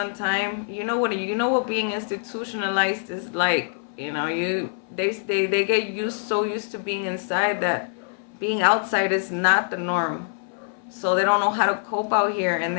time. You know what being institutionalized is like. They get so used to being inside that being outside is not the norm. So they don't know how to cope out here, and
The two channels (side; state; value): right; silent; 58 dB below the other